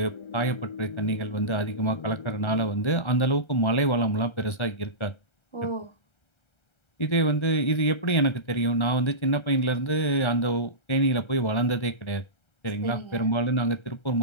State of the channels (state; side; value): late; right; 1.3 ms